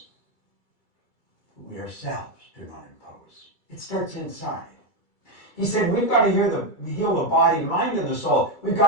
We ourselves do not impose. It starts inside. He said, we've got to heal the body, mind, and the soul. We've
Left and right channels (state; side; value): late; right; 2.3 ms